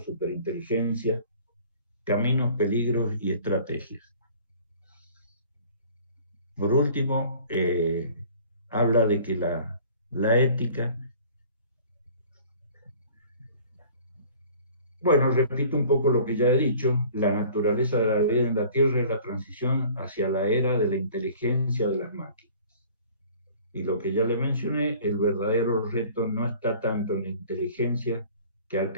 Caminos, Peligros y Estrategias. Por último, habla de que la ética. Bueno, repito un poco lo que ya he dicho, la naturaleza de la vida en la Tierra es la transición hacia la era de la inteligencia de las máquinas. Y lo que ya le mencioné, el verdadero reto no está tanto en la inteligencia que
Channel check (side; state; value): both; inverted; correlation -0.49